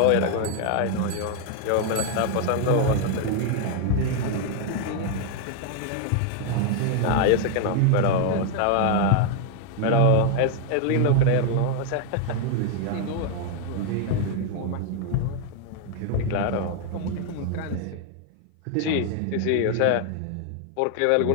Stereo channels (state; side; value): different; both; correlation 0.00